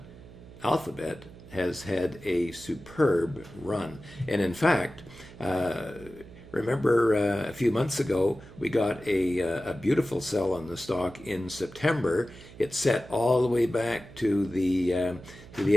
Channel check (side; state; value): right; noise; hum, 18 dB below the sound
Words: Alphabet has had a superb run. And in fact, remember a few months ago, we got a beautiful sell on the stock in September. It set all the way back to the